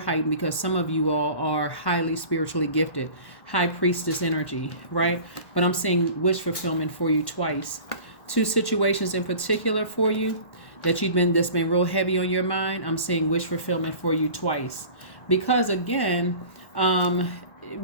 because some of you all are highly spiritually gifted. High Priestess energy, right? But I'm seeing wish fulfillment for you twice. Two situations in particular for you that's been real heavy on your mind. I'm seeing wish fulfillment for you twice. Because again,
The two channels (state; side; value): late; right; 1.1 ms